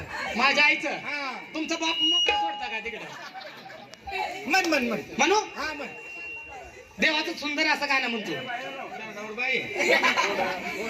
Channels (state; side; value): identical; both; correlation 1.00